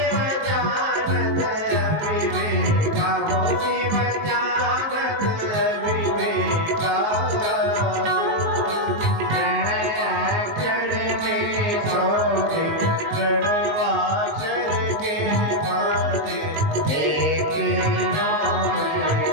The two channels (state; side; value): late; left; 19 ms